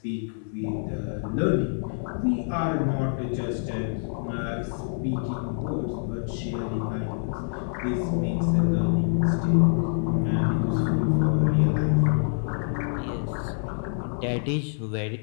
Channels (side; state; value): right; silent; 61 dB below the other